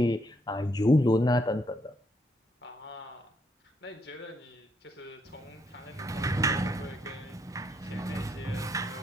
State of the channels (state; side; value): normal; both; correlation 0.75